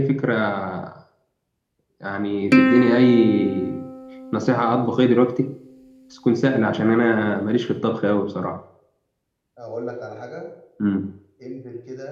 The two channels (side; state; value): both; identical; correlation 1.00